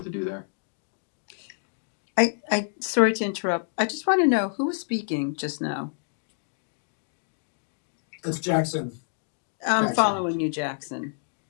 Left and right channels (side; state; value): right; silent; digital silence